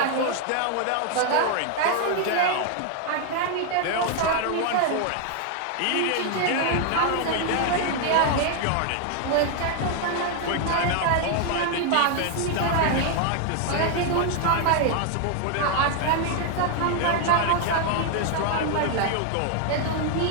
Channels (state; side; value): different; both; correlation 0.00